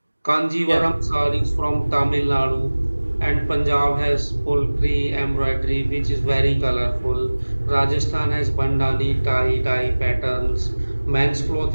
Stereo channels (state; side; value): inverted; both; correlation -1.00